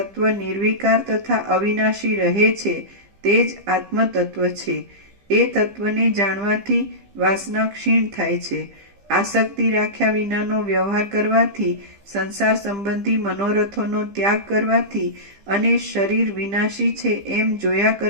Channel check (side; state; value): left; late; 15 ms